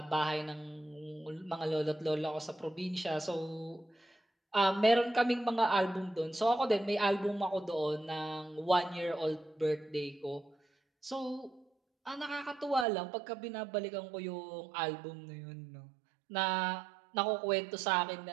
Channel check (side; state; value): left; drops out; at 12.9 s